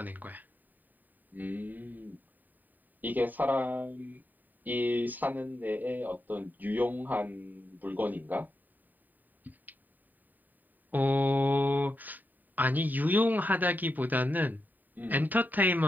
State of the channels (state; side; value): late; left; 0.087 ms